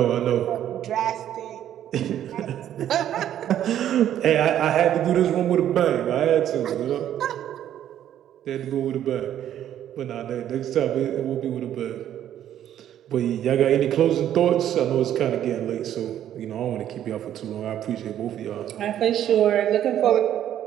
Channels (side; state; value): left; quieter; 11.0 dB